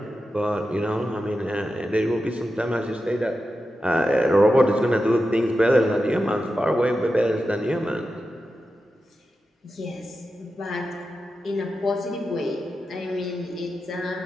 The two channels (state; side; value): normal; both; correlation 0.90